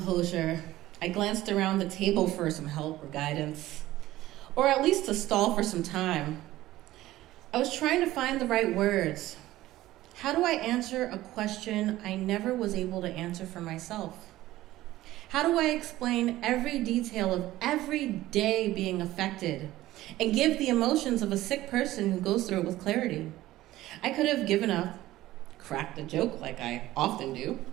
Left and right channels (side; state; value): left; quieter; 15.9 dB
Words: I glanced around the table for some help or guidance, or at least to stall for some time. I was trying to find the right words. How do I answer a question I never was able to answer for myself? How do I explain every detail of every day being affected and give the emotions of a sick person who goes through it with clarity? I could have given up, cracked a joke like I often do,